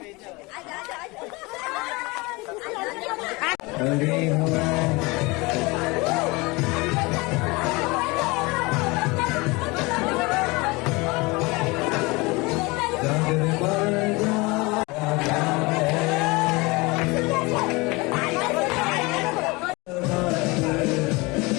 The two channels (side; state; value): right; quieter; 24.8 dB